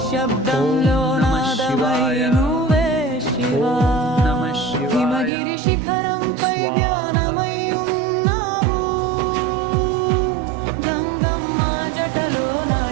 నాదమై నువ్వే శివా, హిమగిరి శిఖరంపై ధ్యానమై ఉన్నావు, గంగమ్మ జటలో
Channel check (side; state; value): left; drops out; at 5.3 s